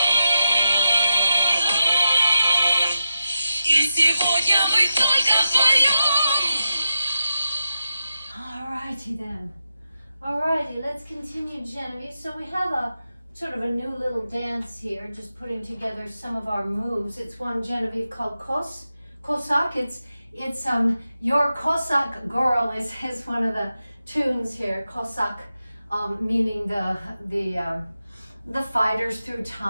И сегодня мы только вдвоем. Alrighty then. Alrighty, let's continue, Genevieve. So we have a sort of a new little dance here, just putting together some of our moves. It's one, Genevieve, called Cossack. It's Your Cossack Girl is one of the tunes here. Cossack, meaning the fighters through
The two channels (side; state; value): both; inverted; correlation -0.88